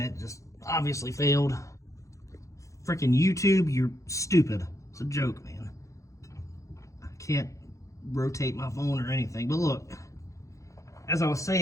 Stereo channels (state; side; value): late; right; 0.15 ms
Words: it just obviously failed. Freaking YouTube, you're stupid. It's a joke, man. I can't rotate my phone or anything. But look, as I was